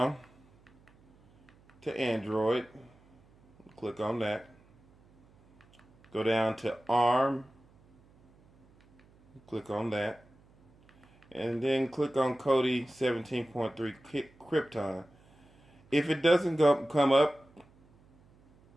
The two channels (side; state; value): right; noise; hum, 30 dB below the sound